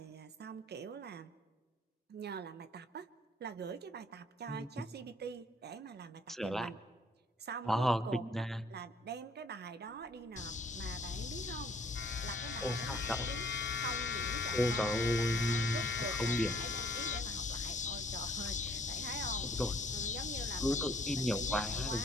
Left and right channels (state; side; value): normal; both; correlation 0.60